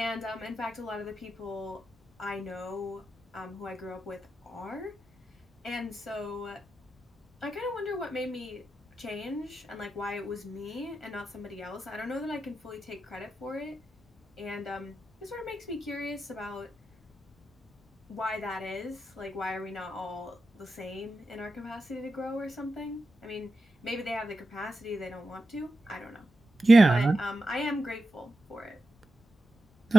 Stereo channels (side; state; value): both; normal; correlation 0.90